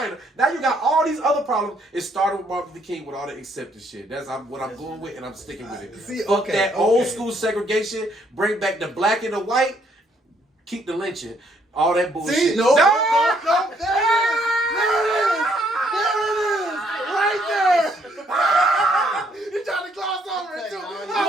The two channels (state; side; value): normal; both; correlation 0.69